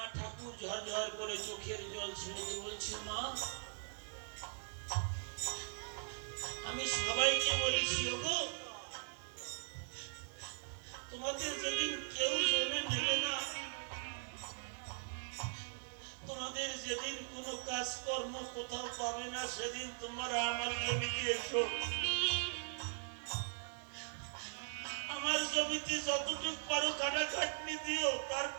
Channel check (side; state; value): left; silent; digital silence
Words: ঠাকুর ঝরঝর করে চোখের জল ছেড়ে দিয়ে বলছে, মা আমি সবাইকে বলেছি, ওগো তোমাদের যেদিন কেউ জমি নেবে না, তোমাদের যেদিন কোনো কাজকর্ম কোথাও পাবে না, সেদিন তোমরা আমার জমিতে এসো, আমার জমিতে যতটুক পারো কাটাকাটনি দিও, তার